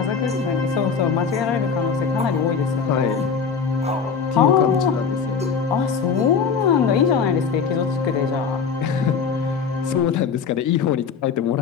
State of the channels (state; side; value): quieter; right; 6.0 dB